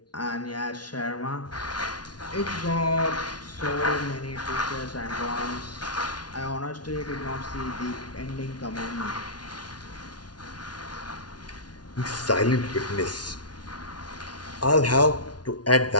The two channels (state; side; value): late; right; 0.69 ms